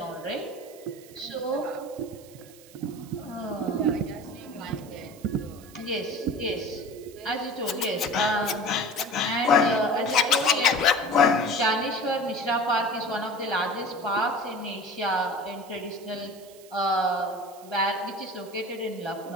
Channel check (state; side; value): noise; right; hiss, 22 dB below the sound